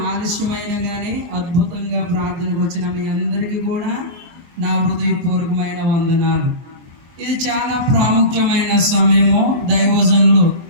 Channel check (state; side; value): late; left; 23 ms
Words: ఆలస్యమైన కానీ అద్భుతంగా ప్రార్థనకు వచ్చిన మీ అందరికీ కూడా నా హృదయపూర్వకమైన వందనాలు. ఇది చాలా ప్రాముఖ్యమైన సమయము. దైవజనులు